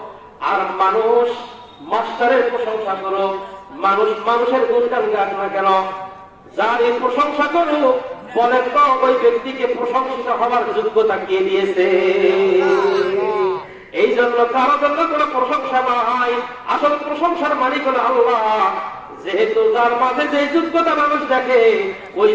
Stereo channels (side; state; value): both; identical; correlation 1.00